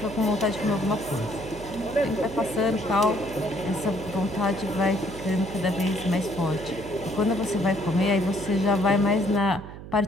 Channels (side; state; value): right; noise; hum, 13 dB below the sound